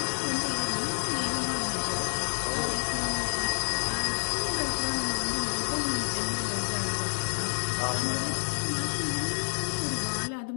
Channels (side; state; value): right; silent; 59 dB below the other